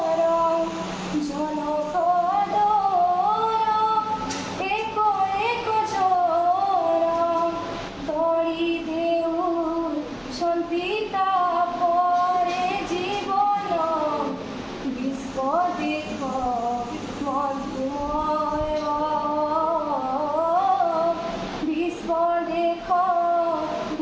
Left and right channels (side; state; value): both; identical; correlation 1.00